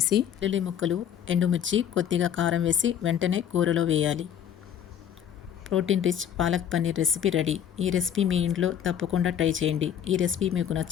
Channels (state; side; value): quieter; right; 9.3 dB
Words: వెల్లుల్లి ముక్కలు, ఎండుమిర్చి, కొద్దిగా కారం వేసి వెంటనే కూరలో వేయాలి. Protein rich palak paneer recipe ready. ఈ రెసిపీ మీ ఇంట్లో తప్పకుండా ట్రై చేయండి. ఈ రెసిపీ మీకు